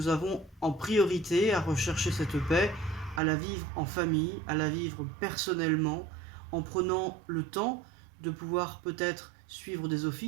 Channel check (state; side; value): drops out; left; at 3.2 s